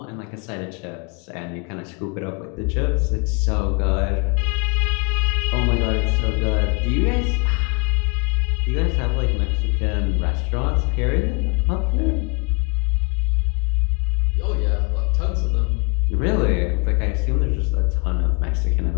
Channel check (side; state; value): right; quieter; 31.3 dB